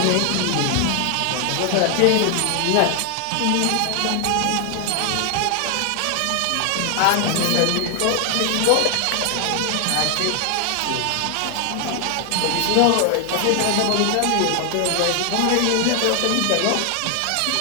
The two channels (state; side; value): different; both; correlation 0.00